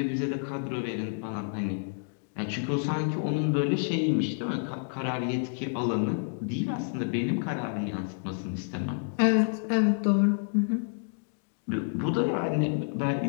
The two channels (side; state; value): right; silent; digital silence